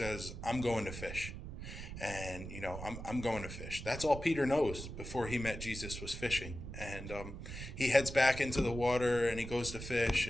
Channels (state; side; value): noise; right; rumble, 9 dB below the sound